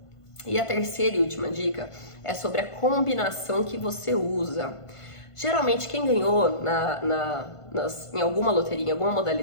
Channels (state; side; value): late; right; 1.5 ms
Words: E a terceira e última dica é sobre a combinação que você usa. Geralmente, quem ganhou em alguma loteria, em alguma